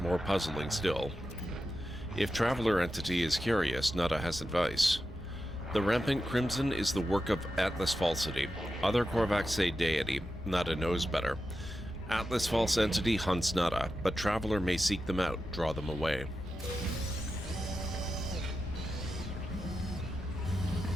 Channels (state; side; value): normal; both; correlation 0.90